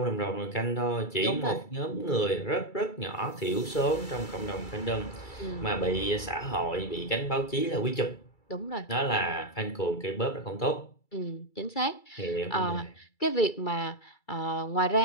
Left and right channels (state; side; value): late; right; 2.3 ms